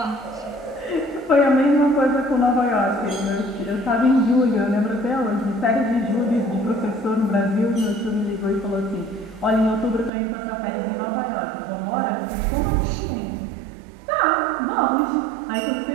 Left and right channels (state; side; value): drops out; left; at 10.1 s